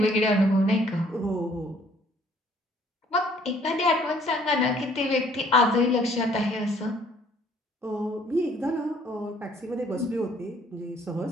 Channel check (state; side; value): normal; both; correlation 0.60